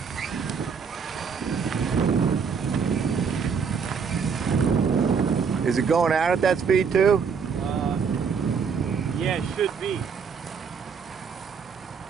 Is it going out at that speed too? Yeah, it should be.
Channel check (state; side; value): quieter; left; 6.1 dB